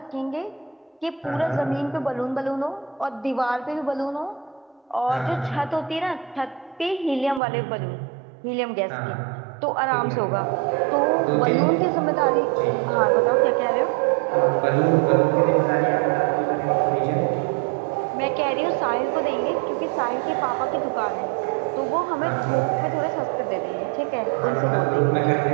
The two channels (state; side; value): drops out; left; at 7.4 s